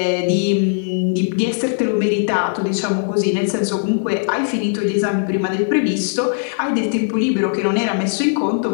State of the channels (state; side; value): silent; right; 67 dB below the other